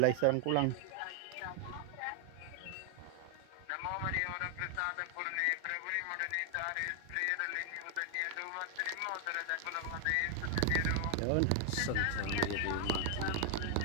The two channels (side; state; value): both; different; correlation 0.00